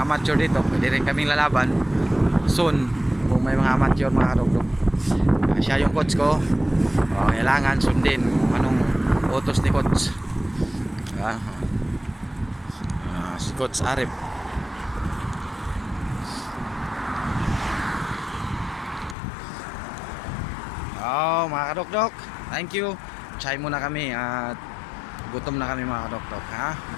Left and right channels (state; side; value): drops out; right; at 19.2 s